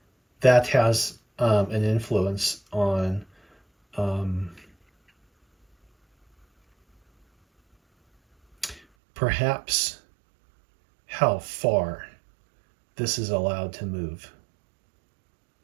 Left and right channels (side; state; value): left; drops out; at 8.8 s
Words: that has an influence on perhaps how far this is allowed to move